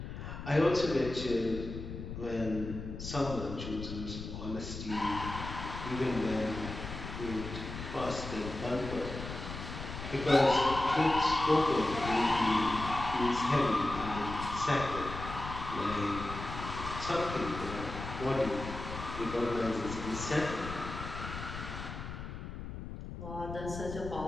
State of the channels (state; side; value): noise; left; rumble, 8 dB below the sound